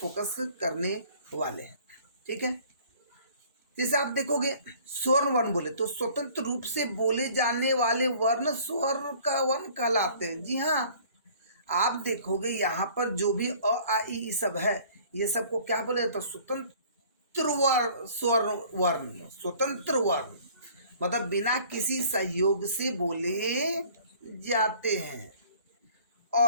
करने वाले हैं, ठीक है। जैसे आप देखोगे स्वर्ण वर्ण बोले तो स्वतंत्र रूप से बोले जाने वाले वर्ण स्वर का वर्ण कहलाते हैं। जी हाँ, आप देखोगे यहाँ पर जो भी अ आ ई सब है, ये सबको क्या बोले तो स्वतंत्र वर्ण, स्वर्ण वर्ण, स्वतंत्र वर्ण मतलब बिना किसी सहयोग से बोले जाते हैं।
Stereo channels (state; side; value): inverted; both; correlation -0.53